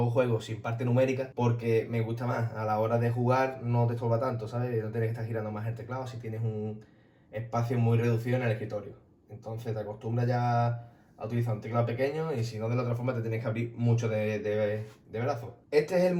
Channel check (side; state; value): both; identical; correlation 1.00